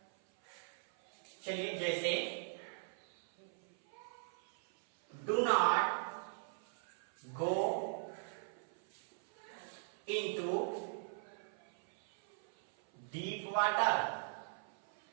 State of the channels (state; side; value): silent; left; 51 dB below the other